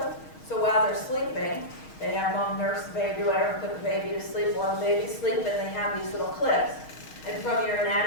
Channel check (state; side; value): late; right; 6.3 ms